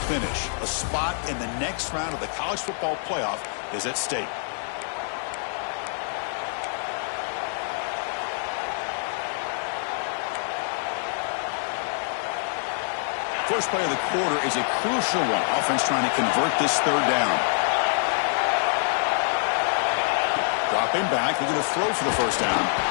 finish. A spot in the next round of the college football playoff is at stake. First play of the quarter is a crucial one. Offense trying to convert this third down. Dropping back. They're going to throw for the first down.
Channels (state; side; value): silent; right; 61 dB below the other